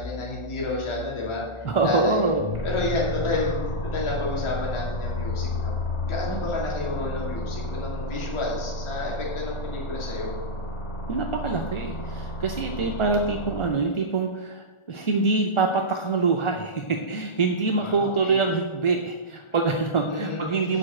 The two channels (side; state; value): right; late; 1.4 ms